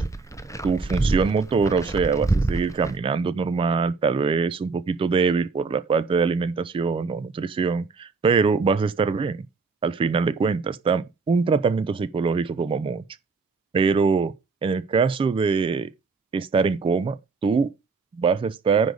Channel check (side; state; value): left; quieter; 4.5 dB